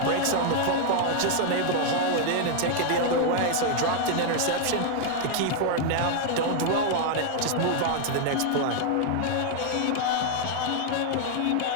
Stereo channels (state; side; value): different; both; correlation 0.00